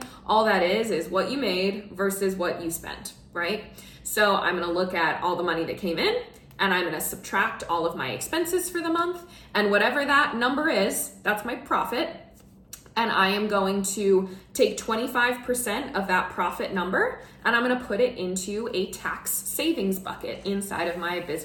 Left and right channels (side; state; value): both; identical; correlation 1.00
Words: all that is what you made versus what you spent, right? So I'm gonna look at all the money that came in, and I'm gonna subtract all of my expenses for the month, and whatever that number is, that's my profit. And I am going to take 25% of that profit number, and I'm gonna put it into a tax savings bucket inside of my